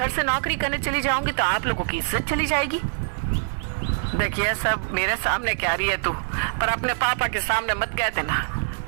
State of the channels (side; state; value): left; silent; 59 dB below the other